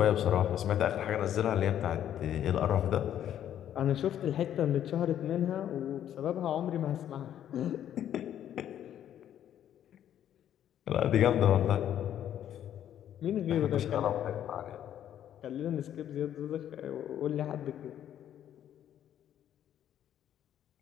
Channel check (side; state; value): right; quieter; 10.6 dB